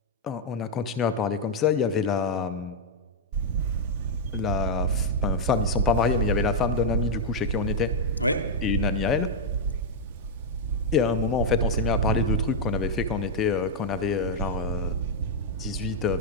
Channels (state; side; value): normal; both; correlation -0.03